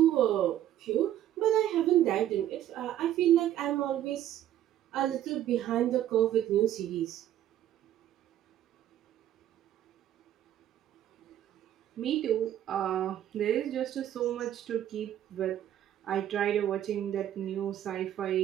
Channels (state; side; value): quieter; left; 11.8 dB